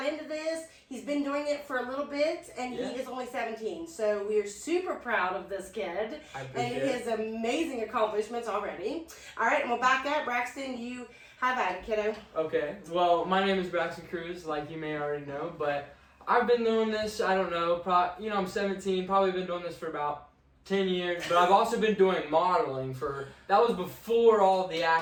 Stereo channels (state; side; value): identical; both; correlation 1.00